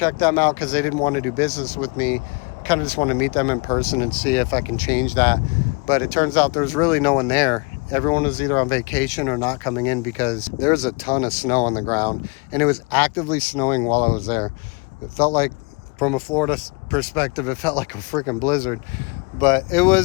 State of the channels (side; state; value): right; quieter; 29.9 dB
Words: them out because they didn't want to do business with me. Kind of just want to meet them in person and see if I can change that. But it turns out there's really no one there. Everyone was either on vacation or not coming in because there's a ton of snow on the ground and it was actively snowing while I was there. It felt like, from a Florida perspective, it felt like a freaking blizzard. But it